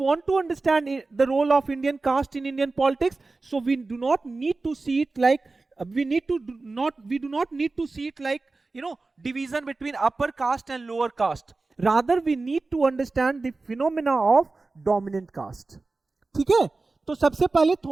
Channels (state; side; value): quieter; left; 3.6 dB